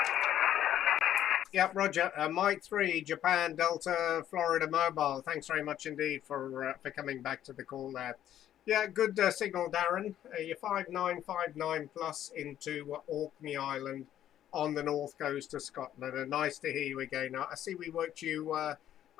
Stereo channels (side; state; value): right; quieter; 11.4 dB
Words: Yep, Roger. Mike 3, Japan, Delta, Florida Mobile. Thanks very much indeed for coming back to the call there. Yeah, good signal, Darren. You're 5959 plus into Orkney Island on the north coast of Scotland. And nice to hear you again. I see we worked you